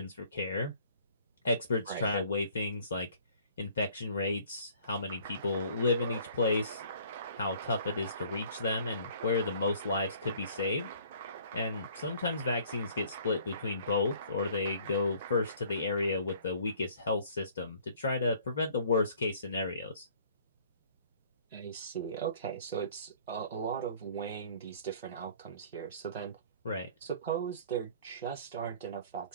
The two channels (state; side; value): inverted; both; correlation -0.55